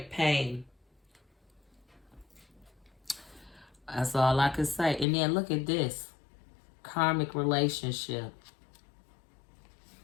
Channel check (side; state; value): right; drops out; at 5.1 s